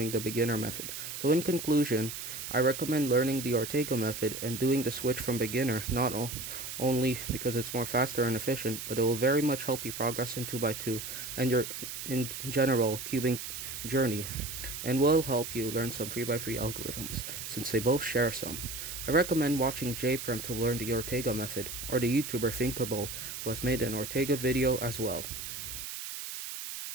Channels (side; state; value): right; noise; hiss, 7 dB below the sound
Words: the beginner method. So in conclusion, I recommend learning the Ortega method and doing the switch from beginner, not only because it's more faster and efficient, but it will very much help you progress in 2x2 and your in general cubing journey, and will help you learn some 3x3 algorithms since they both share some. I recommend watching JPerm to learn the Ortega method, or the YouTuber Thinkable, who has made an Ortega video as well.